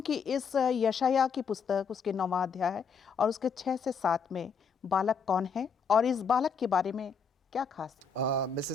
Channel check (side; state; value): right; quieter; 5.8 dB